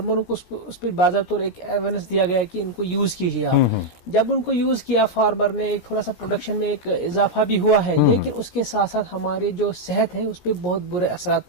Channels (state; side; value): late; right; 17 ms